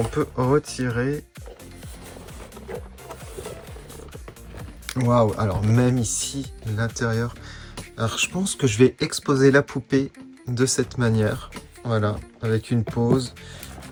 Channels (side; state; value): both; identical; correlation 1.00